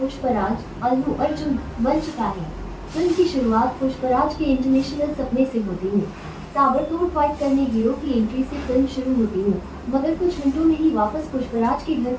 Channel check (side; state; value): both; identical; correlation 1.00